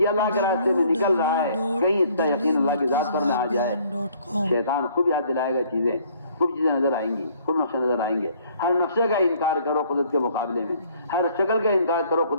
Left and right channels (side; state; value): both; inverted; correlation -0.60